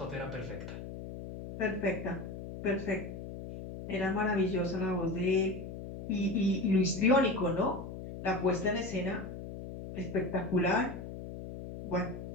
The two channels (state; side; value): noise; left; hum, 9 dB below the sound